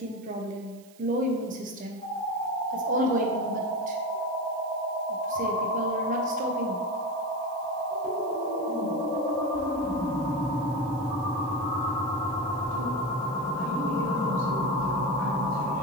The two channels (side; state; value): right; noise; hiss, 25 dB below the sound